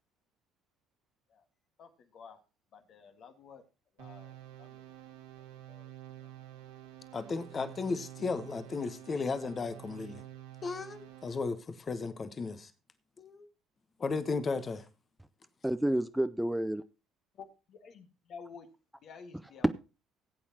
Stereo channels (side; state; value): both; normal; correlation 0.90